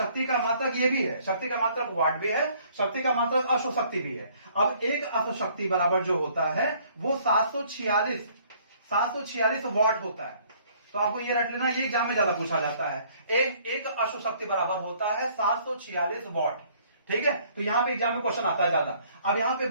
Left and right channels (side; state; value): both; inverted; correlation -0.60